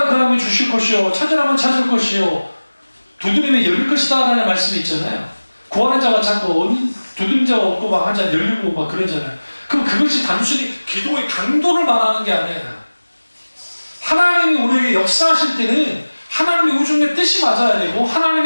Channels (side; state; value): both; inverted; correlation -1.00